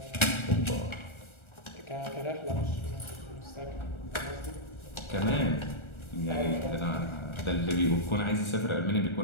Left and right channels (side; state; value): right; late; 1.4 ms